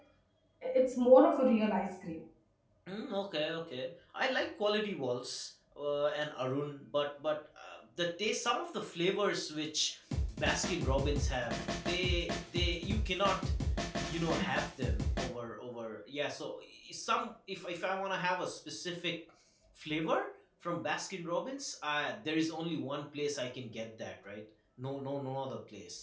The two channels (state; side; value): identical; both; correlation 1.00